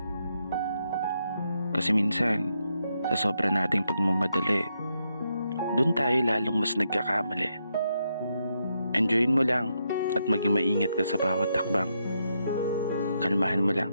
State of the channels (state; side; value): inverted; both; correlation -0.81